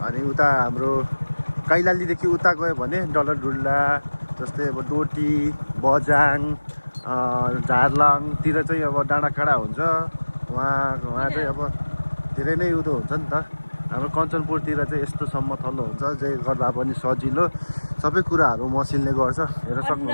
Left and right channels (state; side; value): inverted; both; correlation -1.00